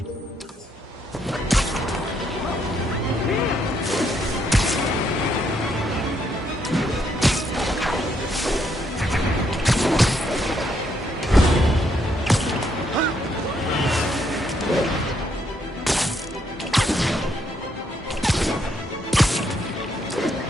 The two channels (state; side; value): normal; both; correlation 0.74